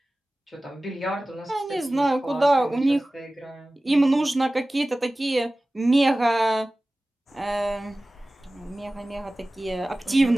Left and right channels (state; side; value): normal; both; correlation 0.97